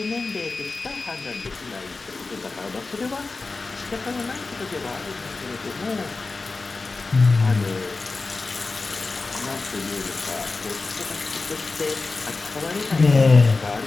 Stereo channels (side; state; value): right; quieter; 3.8 dB